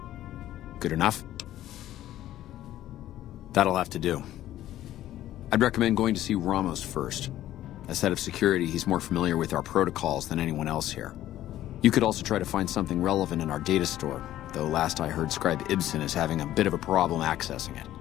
Good enough? That'll have to do. I'd recommend going to see Ramos first. As head of security, he's more familiar with our protocols than anyone else here. You could also try to find something relevant in our data store, though last I heard Scribe Ibsen is having a bit of a problem accessing it.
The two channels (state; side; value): quieter; right; 13.4 dB